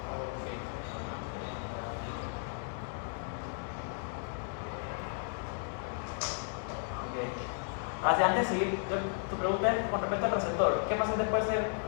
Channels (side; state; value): right; silent; 55 dB below the other